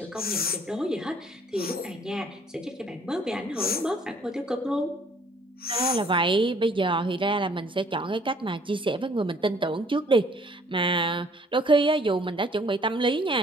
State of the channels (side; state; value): both; normal; correlation 0.59